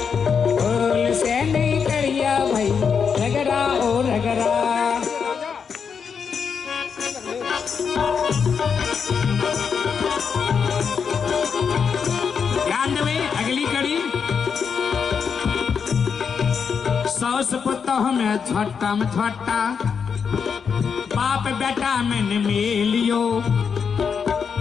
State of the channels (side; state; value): right; quieter; 6.4 dB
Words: भूल से नहीं करिया भैया रगड़ा ओ रगड़ा। ध्यान देवे अगली कड़ी। सौस पुतोह में झट्टा में झट्टा, बाप बेटा में मिलियो,